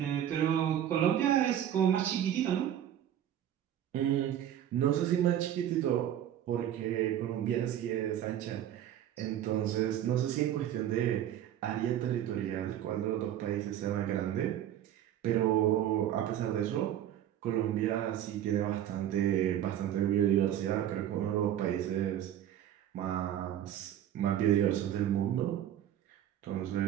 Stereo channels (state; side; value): quieter; left; 11.0 dB